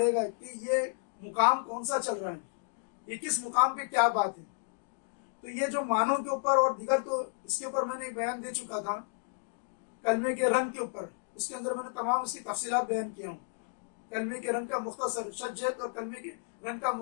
گا کہ یہ مقام کون سا چل رہا ہے، یہ کس مقام پہ کیا بات ہے۔ تو یہ جو معنوں کے اوپر اور دیگر تو اس کے اوپر میں نے بیان دے چکا تھا، کلمے کے رنگ کے اوپر اس کے اندر میں نے تمام اس کی تفصیلات بیان کیا ہوں۔ کلمے کے رنگ کا مختصر شجت اور کلمے کے رنگ کا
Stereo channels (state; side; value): silent; right; digital silence